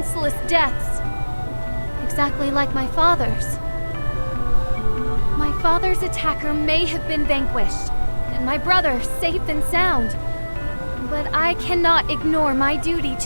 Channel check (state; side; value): inverted; both; correlation -1.00